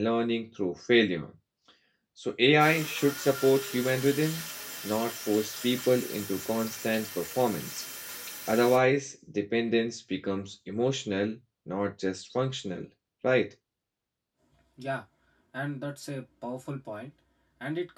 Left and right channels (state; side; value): identical; both; correlation 1.00